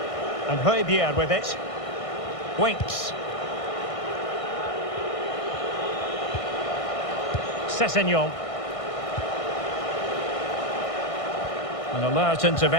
And Hove with it. Winks. Sessegnon. An alert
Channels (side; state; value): right; late; 1.6 ms